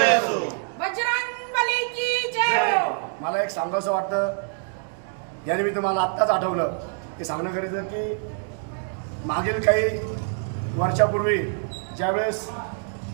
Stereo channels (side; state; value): left; silent; 62 dB below the other